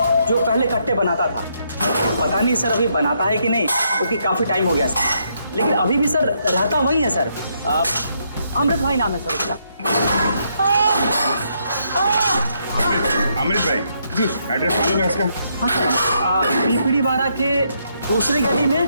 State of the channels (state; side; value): inverted; both; correlation -0.75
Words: जो पहले कट्टे बनाता था। पता नहीं सर अभी बनाता है कि नहीं, क्योंकि काफ़ी टाइम हो गया सर। लेकिन अभी भी सर रहता वही है सर। अमृत भाई नाम है सर उसका। अमृत भाई जी, एड्रेस मालूम है उसका? हाँ सर, पीपड़ी वाड़ा के दूसरी गली में